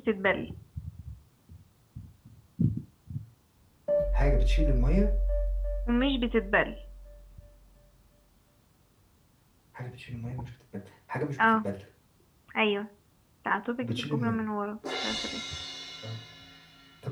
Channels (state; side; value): identical; both; correlation 1.00